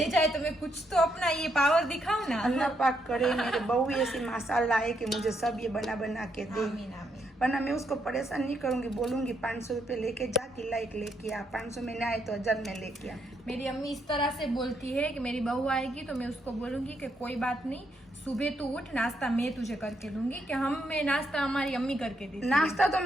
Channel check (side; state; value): both; normal; correlation 0.77